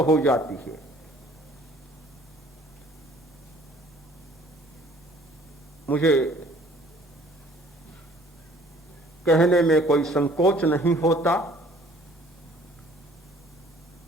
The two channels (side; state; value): both; normal; correlation 0.55